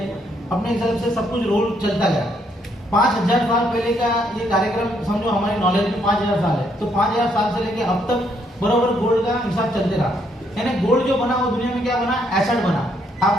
अपने हिसाब से सब कुछ रोल चलता गया। 5000 साल पहले का ये कार्यक्रम समझो, हमारी नॉलेज में 5000 साल है। तो 5000 साल से लेके अब तक बराबर गोल्ड का हिसाब चलते रहा। यानी गोल्ड जो बना वो दुनिया में क्या बना? एसेट बना।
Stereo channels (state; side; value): normal; both; correlation 0.72